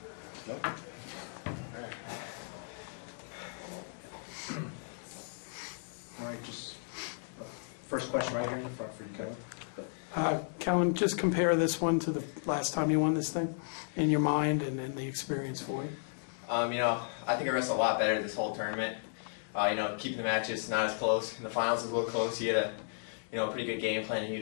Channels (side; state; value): right; silent; digital silence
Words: Nope. All right, just first question right here in the front for you, Kellen. Kellen, just compare this one to the last time you won this thing in your mind and the experience for you. I think I wrestled a lot better this whole tournament. Keeping the matches not as close. In the finals it was a little close. He had a pretty good game plan